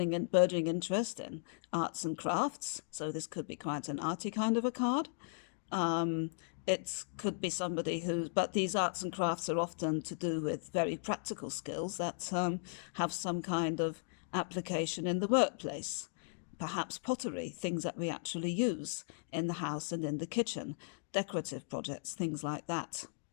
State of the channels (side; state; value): right; silent; digital silence